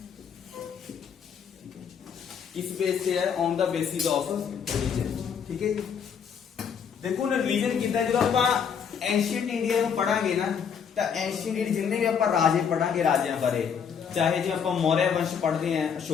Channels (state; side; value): quieter; right; 7.2 dB